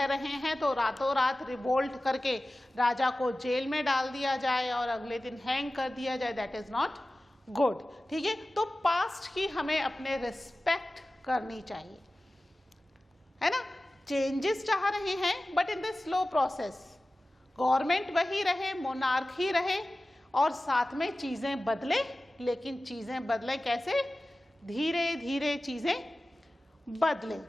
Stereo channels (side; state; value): both; normal; correlation 0.96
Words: रहे हैं तो रातों रात रिवोल्ट करके राजा को जेल में डाल दिया जाए और अगले दिन हैंग कर दिया जाए, दैट इज नॉट गुड। ठीक है, तो पास्ट की हमें अपने रिस्पेक्ट करनी चाहिए, है ना। चेंजेस चाह रहे हैं but in the slow process, government वही रहे, मोनार्क ही रहे और साथ में चीजें बदले, लेकिन चीजें बदले कैसे, धीरे धीरे चीजें बदले।